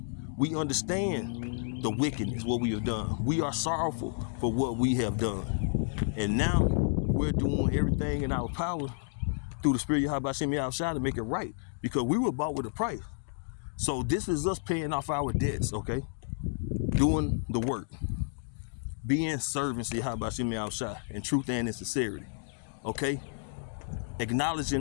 we understand the wickedness, what we have done. We are sorrowful for what we have done. And now we're doing everything in our power through the Spirit of Yahweh Shemi Shai to make it right, because we were bought with a price. So this is us paying off our debts, okay? Doing the work, being servants to Yahweh Shemi Shai in truth and in sincerity, okay?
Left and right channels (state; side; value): silent; right; digital silence